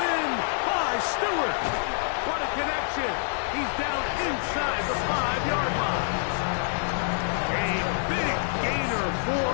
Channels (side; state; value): right; silent; 60 dB below the other